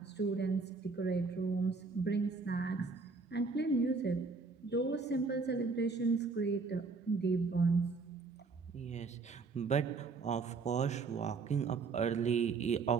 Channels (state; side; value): quieter; left; 4.4 dB